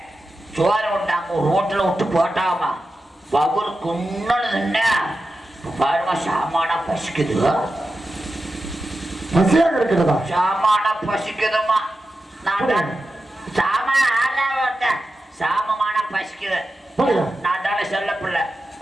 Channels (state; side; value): normal; both; correlation 0.92